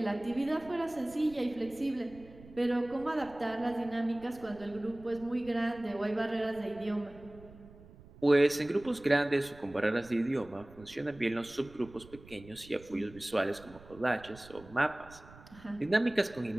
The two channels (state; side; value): noise; right; rumble, 20 dB below the sound